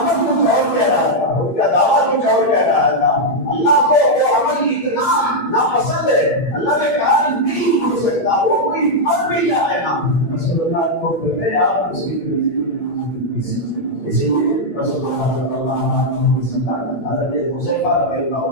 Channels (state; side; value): late; right; 8.7 ms